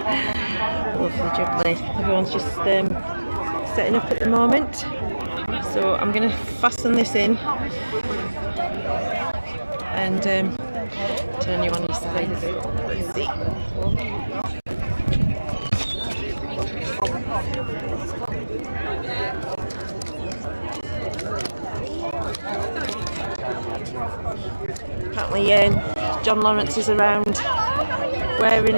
Lovely jubbly. Everyone's just setting up at the moment. So I'm going to fasten this in and turn you on your side. Let's see. Apparently John Lawrence is around wearing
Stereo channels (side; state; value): both; inverted; correlation -1.00